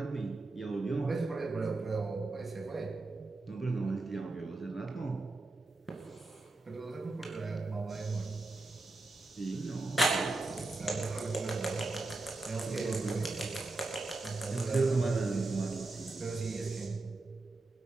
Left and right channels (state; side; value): quieter; left; 3.2 dB